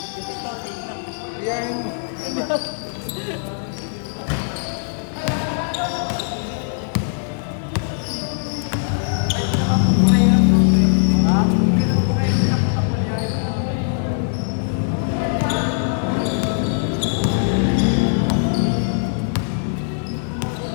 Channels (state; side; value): silent; right; 65 dB below the other